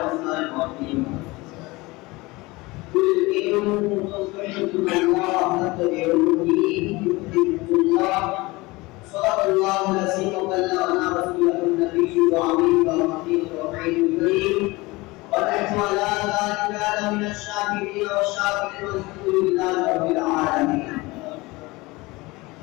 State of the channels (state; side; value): quieter; right; 22.4 dB